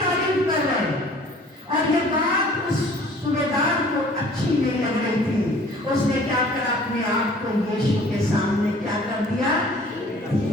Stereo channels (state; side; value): normal; both; correlation 0.51